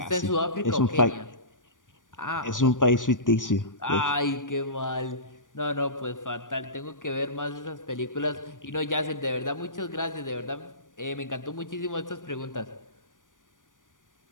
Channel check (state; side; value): late; right; 0.88 ms